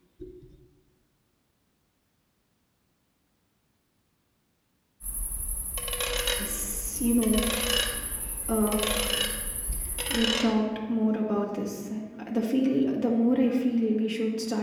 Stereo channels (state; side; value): identical; both; correlation 1.00